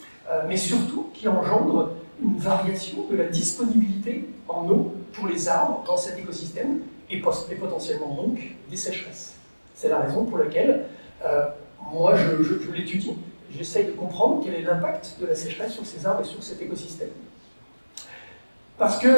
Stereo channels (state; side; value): inverted; both; correlation -1.00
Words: mais surtout qui engendre une variation de la disponibilité en eau pour les arbres dans cet écosystème et potentiellement donc des sécheresses. C'est la raison pour laquelle moi je l'étudie, j'essaye de comprendre quel est l'impact de la sécheresse sur ces arbres et sur cet écosystème. Parce